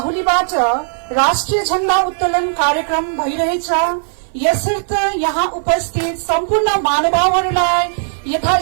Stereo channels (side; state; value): left; silent; 59 dB below the other